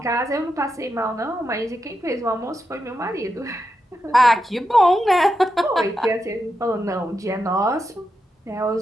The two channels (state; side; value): normal; both; correlation 0.86